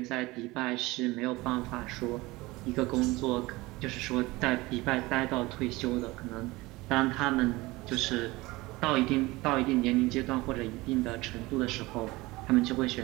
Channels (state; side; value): quieter; left; 21.0 dB